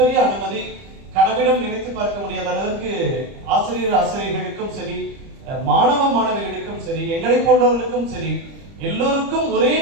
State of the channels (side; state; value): left; late; 30 ms